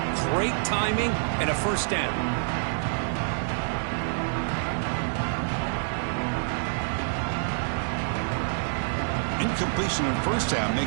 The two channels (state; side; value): silent; left; digital silence